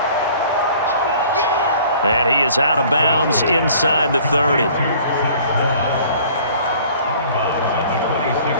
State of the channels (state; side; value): inverted; both; correlation -0.51